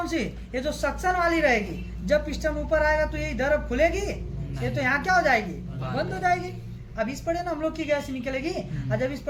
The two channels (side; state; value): both; identical; correlation 1.00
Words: सी, ये जो सक्शन वाली रहेगी, जब पिस्टन ऊपर आएगा तो ये इधर अब खुलेगी, ये तो यहाँ क्या हो जाएगी, बंद हो जाएगी। अब इस पड़े ना हम लोग की गैस निकलेगी, और जब इस